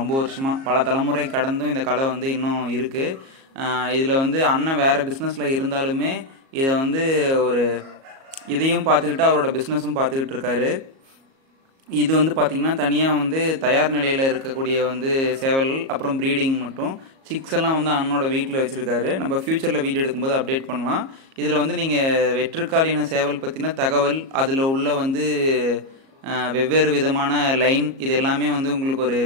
வருஷமாக. பல தலைமுறை கடந்தும் இந்த கலை வந்து இன்னும் இருக்குது. இதில் வந்து அண்ணன் வேறு பிஸ்னஸில் இருந்தாலுமே இதை வந்து ஒரு இதையும் பார்த்துக்கிட்டு அவரோட பிஸ்னஸும் பார்த்துக்கிட்டு இருக்காரு. இது வந்து பார்த்திங்கன்னா தனியாக வந்து தயார் நிலையில் இருக்கக்கூடிய வந்து சேவல்கள், அப்புறம் ப்ரீடிங் மட்டும் சிக்ஸ் எல்லாம் வந்து அண்ணனோட வீட்டில் வச்சுருக்காரு. நம்ம ஃப்யூச்சரில் வீடியோ எடுக்கும்போது அப்டேட் பண்ணலாம். இதில் வந்து நீங்கள் வெற்றுக்காலின சேவல் பற்றின தகவல், அதில் உள்ள வந்து வெவ்வேறு விதமான லைன், இது எல்லாமே வந்து உங்களுக்கு ஒரு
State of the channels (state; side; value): late; left; 37 ms